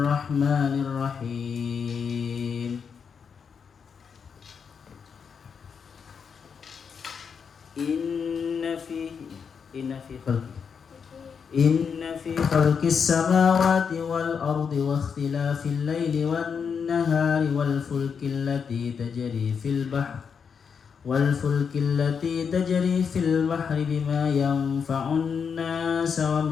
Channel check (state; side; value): quieter; right; 6.4 dB